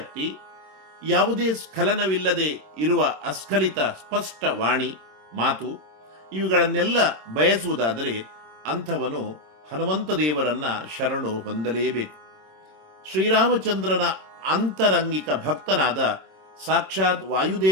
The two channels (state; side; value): late; left; 26 ms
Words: ಯಾವುದೇ ಸ್ಖಲನವಿಲ್ಲದೆ ಇರುವ ಅಸ್ಖಲಿತ ಸ್ಪಷ್ಟ ವಾಣಿ ಮಾತು, ಇವುಗಳನ್ನೆಲ್ಲ ಬಯಸುವುದಾದರೆ ಅಂಥವನು ಹನುಮಂತ ದೇವರನ್ನ ಶರಣು ಹೊಂದಲೇಬೇಕು. ಶ್ರೀರಾಮಚಂದ್ರನ ಅಂತರಂಗಿಕ ಭಕ್ತನಾದ ಸಾಕ್ಷಾತ್